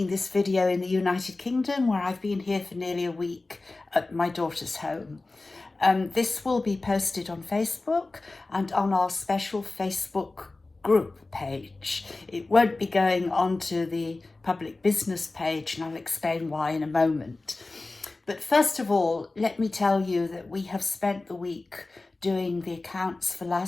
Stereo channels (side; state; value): right; quieter; 3.3 dB